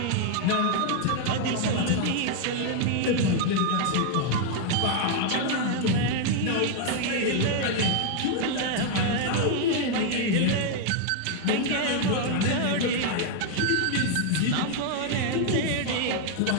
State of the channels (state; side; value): different; both; correlation 0.00